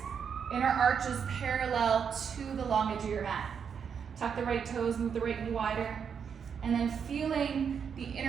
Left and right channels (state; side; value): quieter; left; 7.0 dB